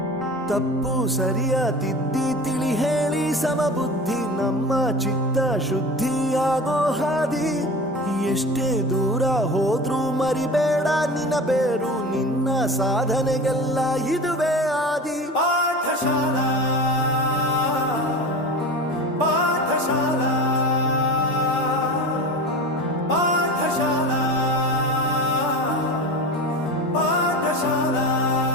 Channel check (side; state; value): both; normal; correlation 0.32